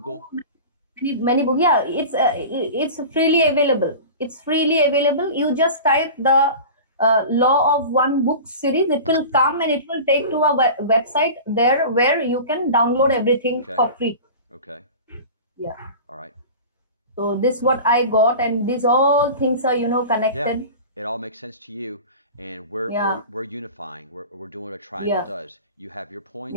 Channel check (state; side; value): inverted; both; correlation -0.35